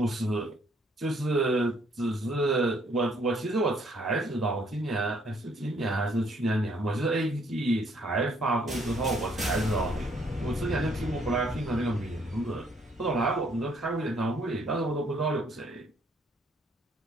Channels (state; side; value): normal; both; correlation 0.66